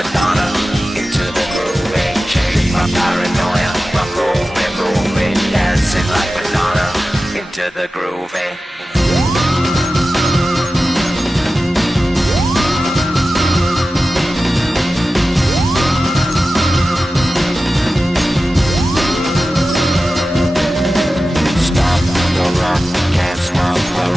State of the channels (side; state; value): both; normal; correlation 0.94